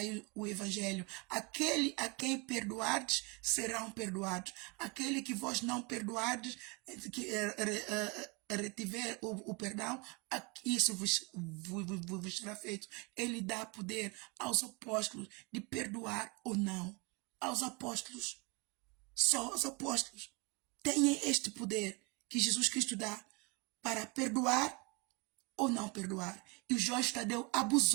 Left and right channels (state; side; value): quieter; left; 29.1 dB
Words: o Evangelho. Aquele a quem perdoardes, serão perdoados. Aquele que vós não perdoardes, que retiver o perdão, isso vos será feito. Ele dá poder aos apóstolos de perdoar ou não. Aos apóstolos. Só os apóstolos têm este poder que Jesus Cristo dá para perdoar ou não perdoar. E o Jorge Tadeu